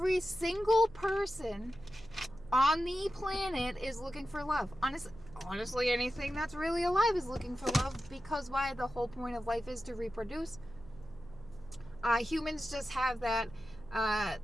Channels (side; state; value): right; noise; hum, 21 dB below the sound